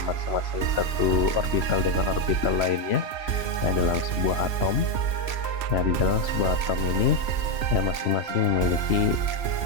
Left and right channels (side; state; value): right; late; 3.0 ms